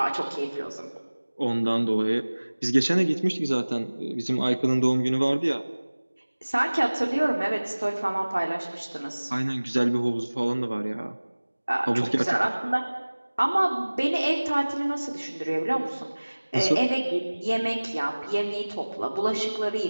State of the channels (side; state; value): both; inverted; correlation -1.00